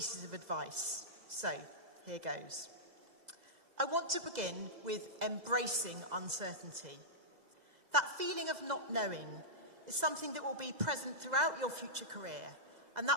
of advice. So, here goes. I want to begin with embracing uncertainty. That feeling of not knowing is something that will be present throughout your future career, and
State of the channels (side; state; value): left; late; 2.0 ms